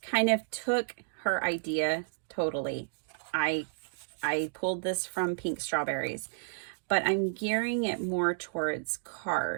kind of took her idea totally. I pulled this from Pink Strawberries, but I'm gearing it more towards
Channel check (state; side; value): silent; left; digital silence